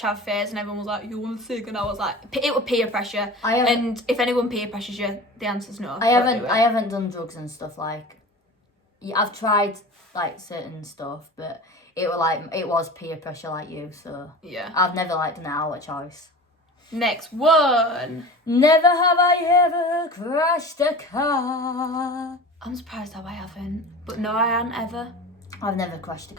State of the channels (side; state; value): both; normal; correlation 0.35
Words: phase and everyone was like, you want a cig? And I was like, it was peer pressure. And if anyone peer pressures you, the answer's no. I haven't done drugs and stuff like... I've tried like certain stuff, but it was peer pressure like you, so... Yeah. I've never like done it out of choice. Next one. Never have I ever crashed a car. I'm surprised how I haven't. But no, I haven't ever. I've never crashed a